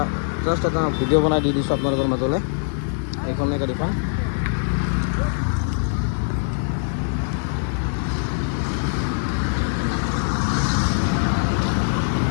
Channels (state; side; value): silent; right; digital silence